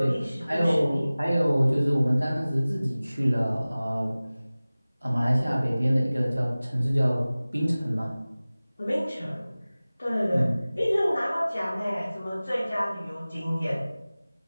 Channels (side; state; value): both; inverted; correlation -0.98